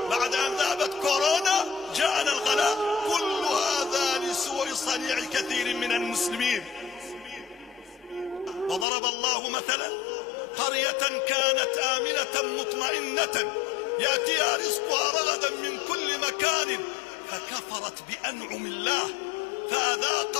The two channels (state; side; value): drops out; right; at 8.8 s